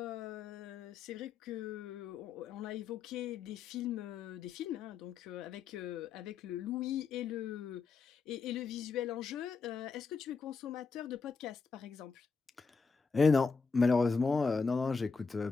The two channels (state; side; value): quieter; right; 4.9 dB